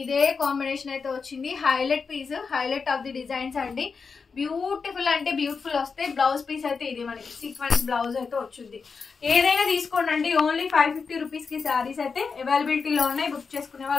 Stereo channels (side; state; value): right; quieter; 5.2 dB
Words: ఇదే కాంబినేషన్ అయితే వచ్చింది. Highlight piece, highlight of the designs అండి. బ్యూటిఫుల్ అంటే బ్యూటిఫుల్ వస్తాయి. బ్లౌజ్ పీస్ అయితే ఇది మనకి సీక్వెన్స్ బ్లౌజ్ అయితే వచ్చింది. ఏదైనా తీసుకోండి. ఓన్లీ 550 రూపీస్ కి శారీస్ అయితే అవైలబిలిటీలో ఉన్నాయి. బుక్ చేసుకునే